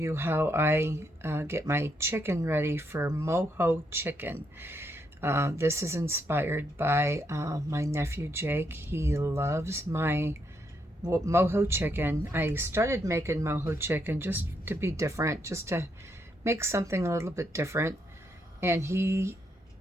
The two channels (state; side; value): normal; both; correlation 0.78